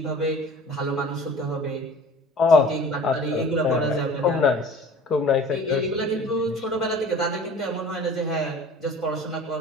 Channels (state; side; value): normal; both; correlation 0.44